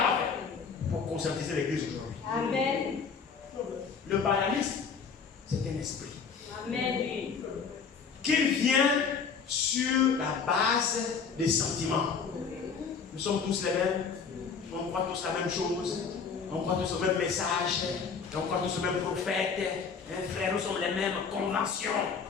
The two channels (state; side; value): quieter; right; 5.8 dB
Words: a fait pour conscientiser l'église aujourd'hui. Amen. Le balamisme, c'est un esprit. Amen. Qui vient sur la base des sentiments. Nous sommes tous les mêmes. On croit tous la même chose. On croit tous au même message. On croit tous au même prophète. Frère, nous sommes les mêmes conventions.